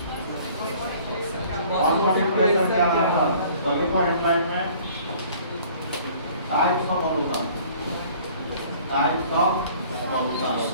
ऑस्मोटिक प्रेशर के आधार पर। तो देखो हेडलाइन में types of solution, types of solution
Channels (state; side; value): inverted; both; correlation -0.53